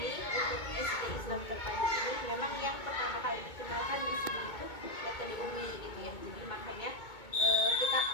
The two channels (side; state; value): right; late; 2.2 ms